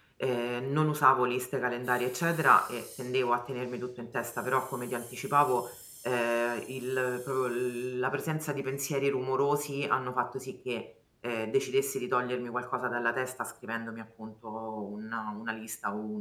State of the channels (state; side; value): identical; both; correlation 1.00